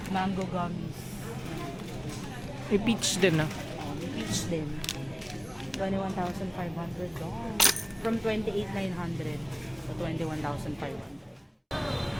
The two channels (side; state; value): both; identical; correlation 1.00